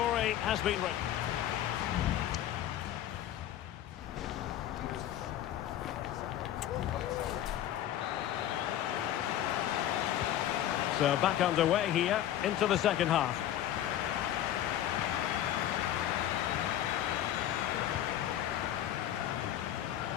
has been written. So back underway here into the second half.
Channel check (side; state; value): right; quieter; 11.9 dB